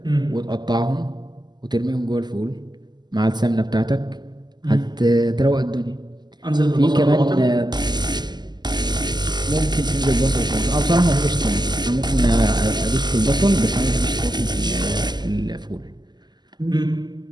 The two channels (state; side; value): late; left; 0.21 ms